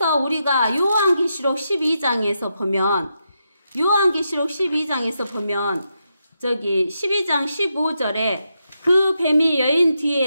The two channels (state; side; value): inverted; both; correlation -0.84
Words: 우리가 요한계시록 12장에서 보면 저기 12장 15절에 그 뱀이 여인